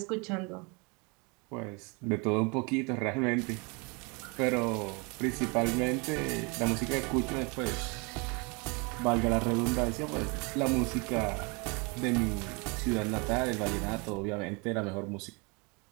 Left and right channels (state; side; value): quieter; left; 30.4 dB